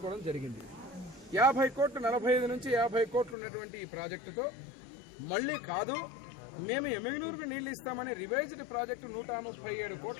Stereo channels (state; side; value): drops out; right; at 3.4 s